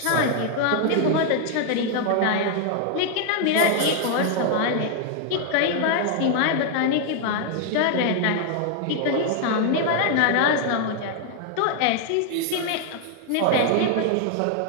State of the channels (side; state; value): both; different; correlation 0.00